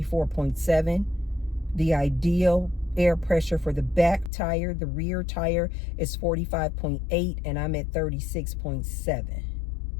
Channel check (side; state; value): right; drops out; at 4.3 s